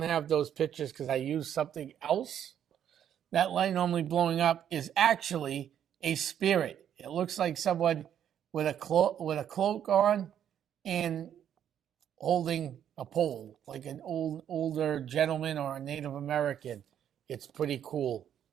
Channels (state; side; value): quieter; left; 9.7 dB